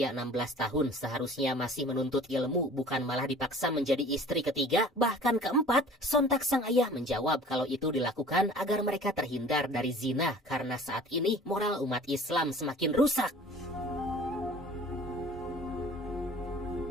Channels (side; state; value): both; normal; correlation 0.47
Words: 16 tahun seharusnya masih menuntut ilmu, bukan malah dipaksa menjadi istri ketiga, bahkan keempat. Sontak sang ayah menjawab kalau itu dilakukan agar mereka terhindar dari zina, karena saat ini moral umat Islam semakin rusak.